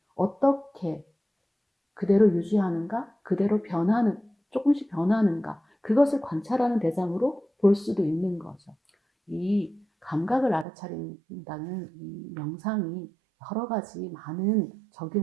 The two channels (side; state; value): left; drops out; at 10.7 s